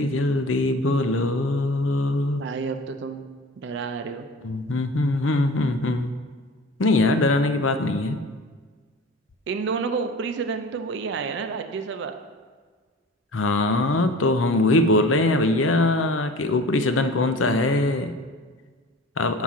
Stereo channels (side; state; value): both; normal; correlation 0.40